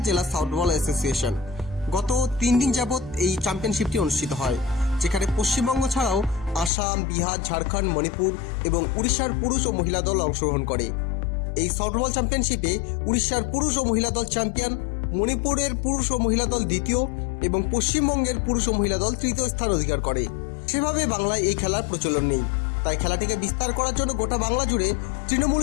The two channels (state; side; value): drops out; right; at 6.7 s